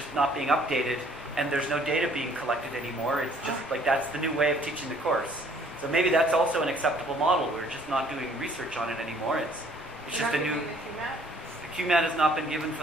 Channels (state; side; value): normal; both; correlation 0.59